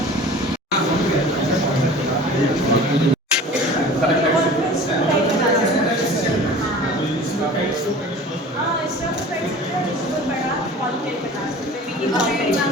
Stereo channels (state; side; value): normal; both; correlation 0.41